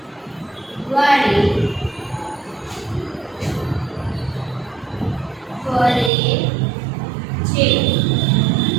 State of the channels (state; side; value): drops out; left; at 6.1 s